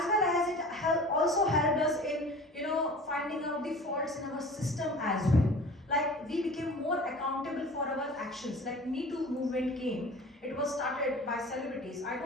well as it also helped us in, finding out the faults in our system as well. Like, we became more accountable for our actions. Like, Me Too movement came. It was started by celebrities. I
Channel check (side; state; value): both; normal; correlation 0.41